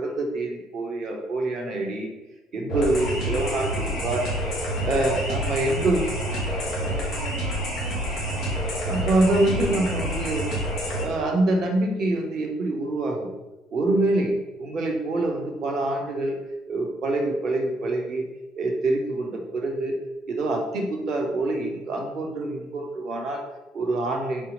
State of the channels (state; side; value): normal; both; correlation 0.67